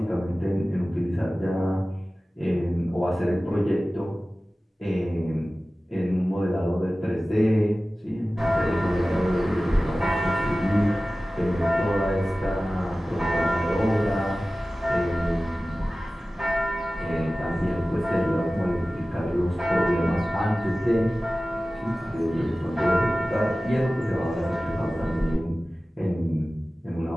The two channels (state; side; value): normal; both; correlation 0.96